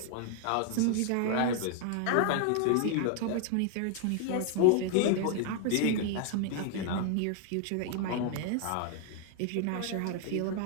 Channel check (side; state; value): both; different; correlation 0.00